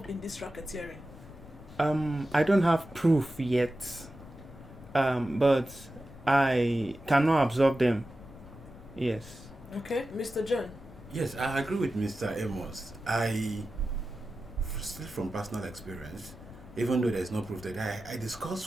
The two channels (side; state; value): left; noise; rumble, 18 dB below the sound